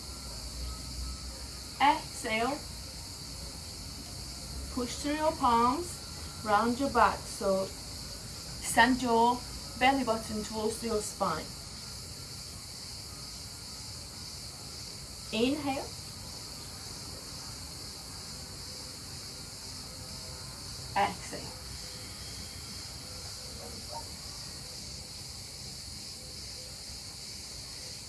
Exhale, push through your palms, round your back, so send your belly button towards your spine. Inhale, exhale.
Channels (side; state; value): both; identical; correlation 1.00